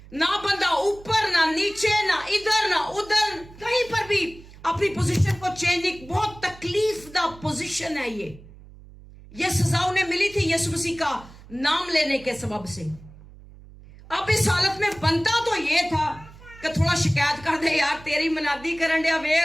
ना बंदा ऊपर, ना नीचे, ना इधर, ना उधर, कहीं पर भी अपनी पोजीशन को चेंज। एक बहुत तकलीफ दा पोजीशन है ये सजा उन्हें मिली थी यीशु मसीह का नाम लेने के सबब से। अब इस हालत में बनता तो ये था कि थोड़ा शिकायत कर दे, यार तेरी मनादी करन दिया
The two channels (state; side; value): noise; right; hum, 20 dB below the sound